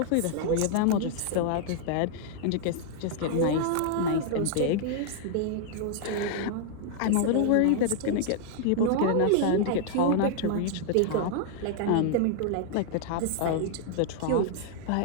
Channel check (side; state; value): both; different; correlation 0.00